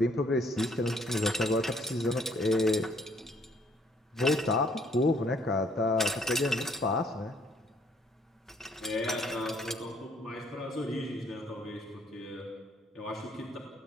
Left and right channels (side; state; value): both; normal; correlation 0.64